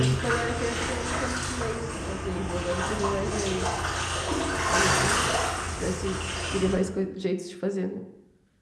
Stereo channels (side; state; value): both; identical; correlation 1.00